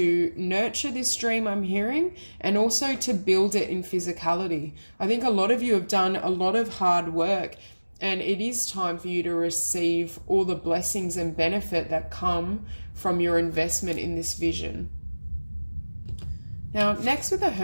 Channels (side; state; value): both; inverted; correlation -1.00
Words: nurture this dream I'm hearing, and also to build it in physicality. I think a lot of you have done a lot of hard work, and it is time for you to receive all the blessings and benefit that come from your investment in this vision. Now, next with the